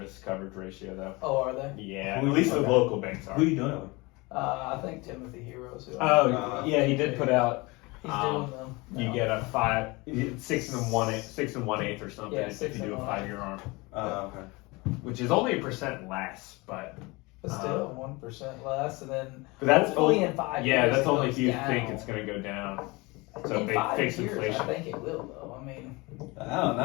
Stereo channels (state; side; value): quieter; right; 24.6 dB